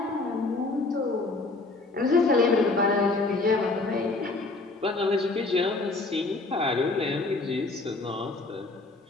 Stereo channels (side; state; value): right; quieter; 3.4 dB